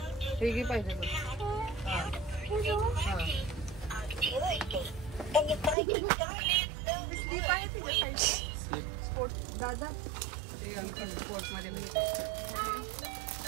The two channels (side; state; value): left; drops out; at 5.8 s